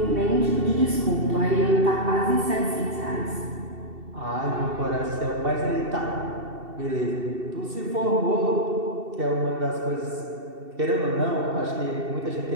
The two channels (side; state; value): left; late; 2.7 ms